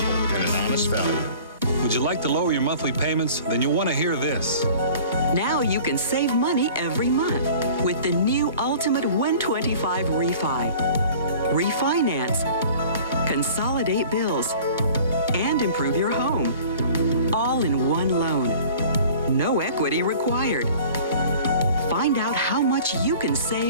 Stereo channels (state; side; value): inverted; both; correlation -0.46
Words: and an honest value. Would you like to lower your monthly payments? Then you'll want to hear this. Now you can save money every month with the new Ultimate 125 Refi. Refinance, consolidate bills, and improve your home. All in one loan. No equity required. Find out how much you can